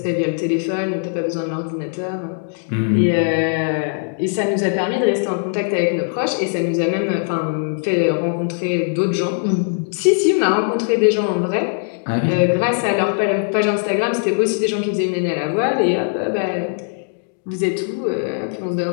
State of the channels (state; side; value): silent; right; 64 dB below the other